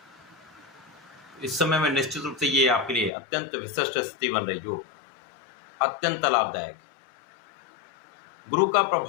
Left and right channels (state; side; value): drops out; right; at 3.1 s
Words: इस समय में निश्चित रूप से ये आपके लिए अत्यंत विशिष्ट स्थिति बन रही जो अत्यंत लाभदायक है। गुरु का